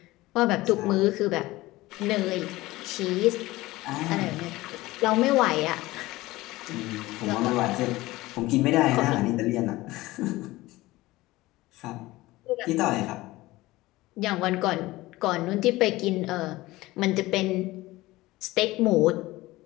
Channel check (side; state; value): right; quieter; 18.8 dB